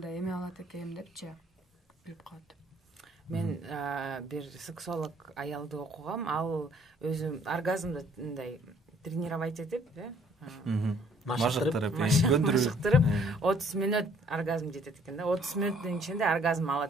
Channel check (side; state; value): both; normal; correlation 0.60